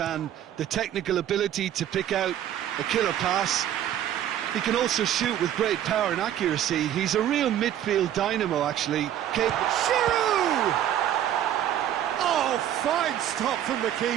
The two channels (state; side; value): quieter; left; 11.1 dB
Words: the technical ability to pick out a killer pass. He can also shoot with great power and accuracy. He's a real midfield dynamo, actually. Giroud! Oh, fine stop from the